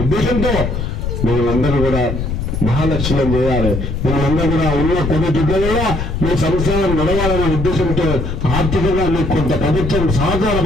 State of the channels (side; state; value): left; noise; rumble, 3 dB below the sound